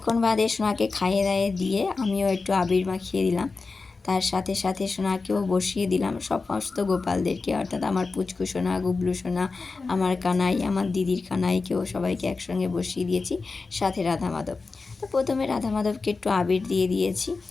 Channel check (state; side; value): quieter; right; 4.1 dB